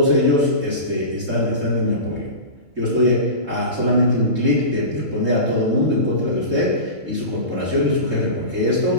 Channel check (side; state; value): left; late; 3.7 ms